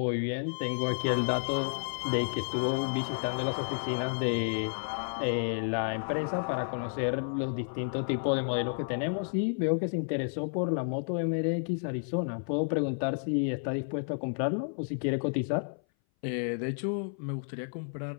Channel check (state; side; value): silent; right; 57 dB below the other